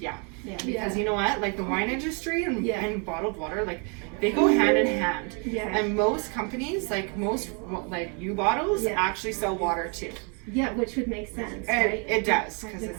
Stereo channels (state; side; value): quieter; left; 36.1 dB